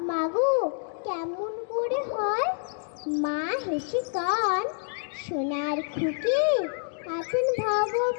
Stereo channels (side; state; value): right; silent; digital silence